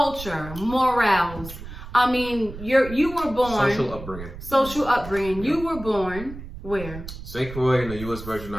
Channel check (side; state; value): right; noise; rumble, 12 dB below the sound